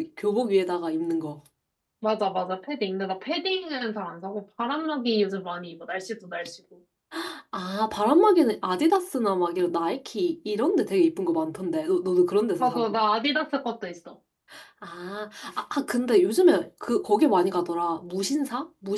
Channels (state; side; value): identical; both; correlation 1.00